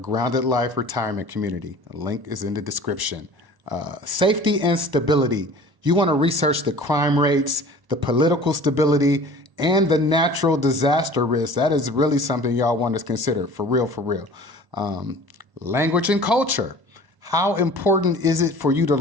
Life Retirement Community. A link is in the description. Safety and stability. You want to research the crime rates, the political stability, and the natural disaster risk. That is really something y'all want to consider, for real, for real. Language and culture. How important is it for you to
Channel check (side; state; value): left; late; 1.0 ms